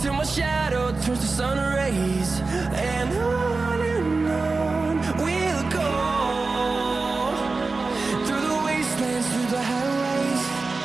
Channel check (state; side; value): quieter; left; 3.8 dB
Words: till my shadow turns to sun rays. And on we'll go, through the wastelands, through the highways,